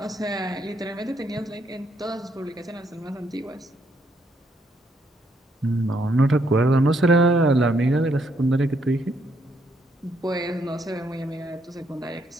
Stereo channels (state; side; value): normal; both; correlation 0.73